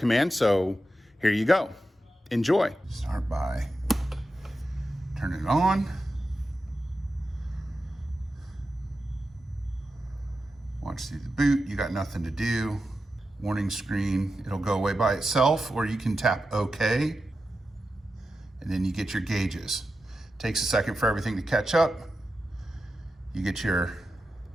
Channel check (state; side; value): normal; both; correlation 0.90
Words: So here you go. Enjoy. Start by turning it on. Watch through the boot. You got nothing to do. Warning screen. It'll go away by itself, or you can tap OK. And then you get your gauges. Takes a second for everything to catch up. You get your